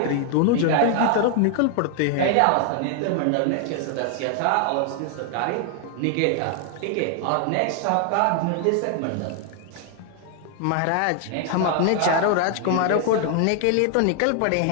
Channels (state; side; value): different; both; correlation 0.00